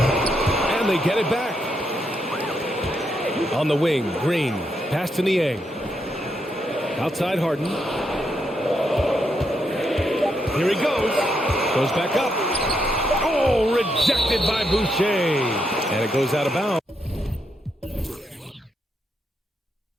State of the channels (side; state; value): both; normal; correlation 0.80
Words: And they get it back. On the wing, Green. Pass to Niang. Outside Harden. Here he goes. Goes back up. Oh, Oh, rejected by Boucher. And it goes out of bounds.